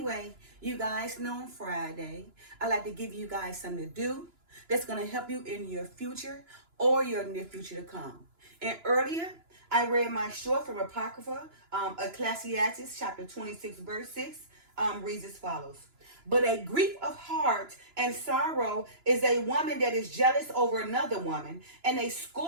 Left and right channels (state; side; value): late; left; 2.9 ms